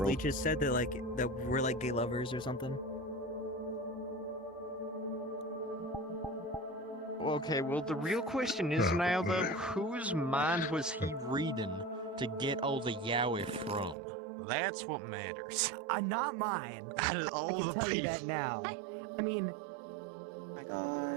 leeches said that that we're like gay lovers or something. Okay, well, the real question is now, though, whose mind was he reading to get all the yaoi from? That's what matters. Not mine. Out of all I can the tell you people. that now. I mean, Oh my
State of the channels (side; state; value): left; drops out; at 14.0 s